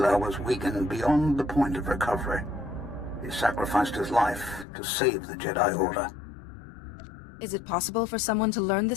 was weakened beyond the point of recovery. He sacrificed his life to save the Jedi Order. Is it possible for someone to learn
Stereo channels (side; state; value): right; drops out; at 4.7 s